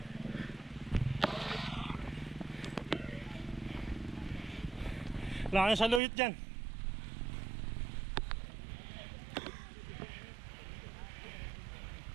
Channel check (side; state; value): left; drops out; at 6.0 s